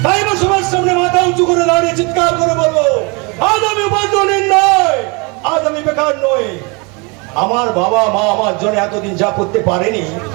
তাই আমার সবার সামনে মাথা উঁচু করে দাঁড়িয়ে চিৎকার করে বলবো, আজ আমি উপার্জনের নয়, আজ আমি বেকার নই। আমার বাবা মা আমার জন্য এতদিন যা করতে পারেনি,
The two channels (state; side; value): quieter; left; 29.9 dB